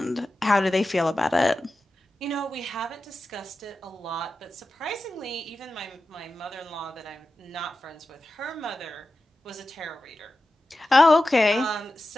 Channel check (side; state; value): both; normal; correlation 0.93